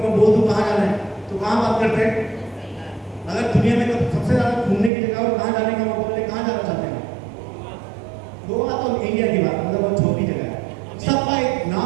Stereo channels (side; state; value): left; drops out; at 4.9 s